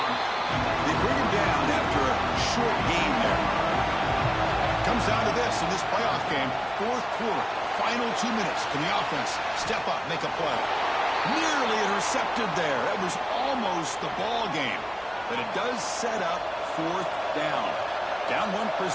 They bring him down after a short game there. Comes down to this in this playoff game. 4th quarter. Final 2 minutes. Can the offense step up, make a play? Nearly intercepted there. That was almost the ball game. But it does set up 4th down. Down 1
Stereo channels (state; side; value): identical; both; correlation 1.00